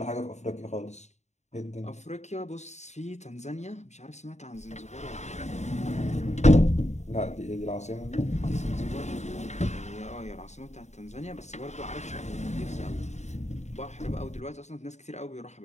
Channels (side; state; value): right; late; 0.33 ms